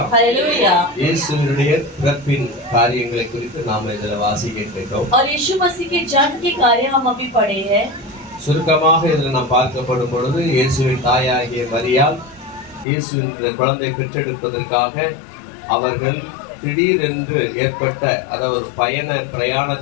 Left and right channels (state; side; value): drops out; right; at 12.9 s